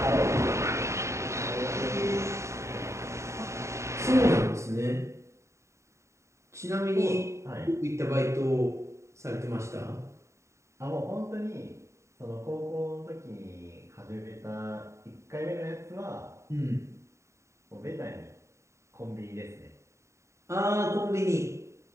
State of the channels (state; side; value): late; left; 0.14 ms